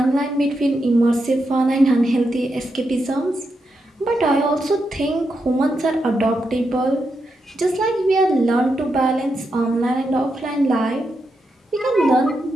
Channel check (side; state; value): both; normal; correlation 0.84